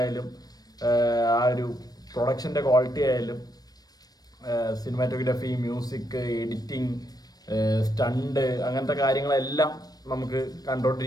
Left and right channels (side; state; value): right; late; 0.19 ms